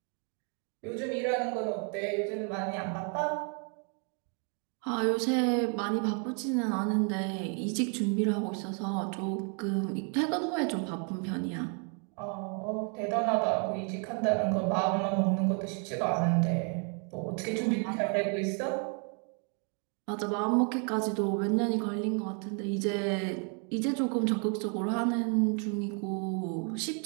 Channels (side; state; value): left; quieter; 39.4 dB